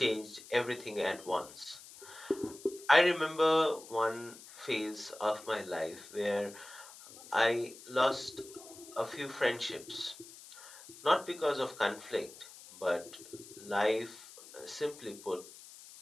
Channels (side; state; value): left; noise; hiss, 18 dB below the sound